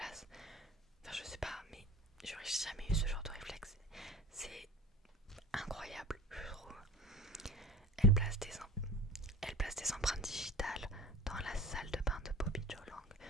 enfin, je sais pas, mais j'aurais jamais eu ce genre de réflexe. C'est incroyable, je trouve. Elle place des empreintes digitales dans la salle de bain de Bobby Joe Lang,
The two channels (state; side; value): normal; both; correlation 0.37